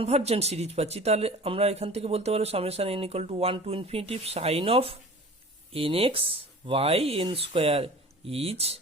series পাচ্ছি, তাহলে আমরা এখান থেকে বলতে পারবো summation n equal to 1 to infinity sine of nx by n square is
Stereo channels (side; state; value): both; normal; correlation 0.41